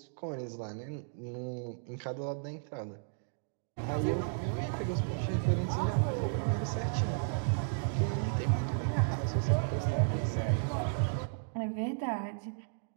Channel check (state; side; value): silent; left; digital silence